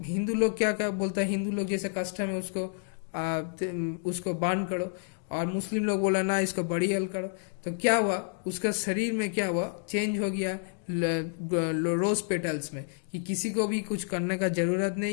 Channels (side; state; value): right; silent; 58 dB below the other